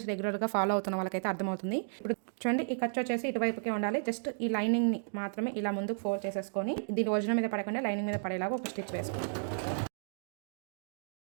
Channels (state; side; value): silent; left; digital silence